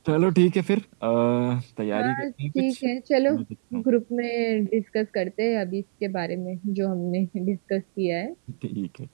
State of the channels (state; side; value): silent; left; 62 dB below the other